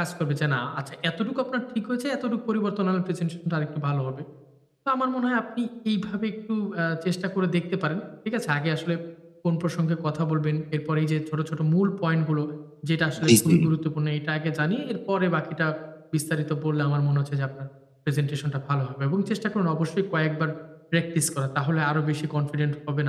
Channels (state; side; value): identical; both; correlation 1.00